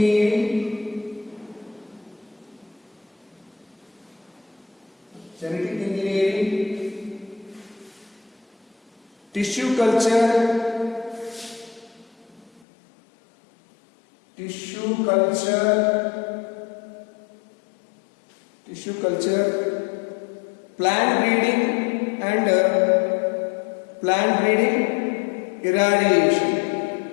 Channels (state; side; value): drops out; right; at 12.6 s